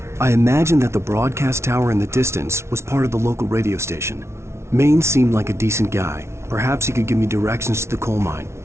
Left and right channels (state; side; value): late; left; 0.13 ms